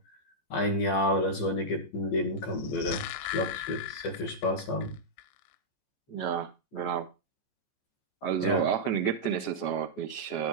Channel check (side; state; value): right; late; 14 ms